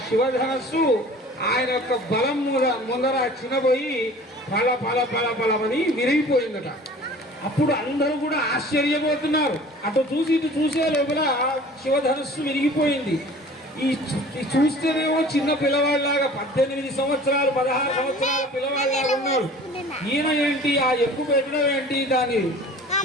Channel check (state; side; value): normal; both; correlation 0.45